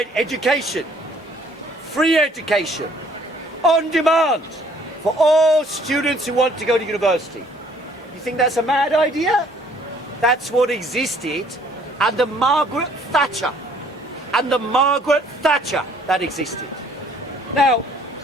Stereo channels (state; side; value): normal; both; correlation 0.60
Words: education, free education, on demand, for all students who want to go to university. You think that's a mad idea? That's what existed under Margaret Thatcher. Under Margaret Thatcher, that existed. Now,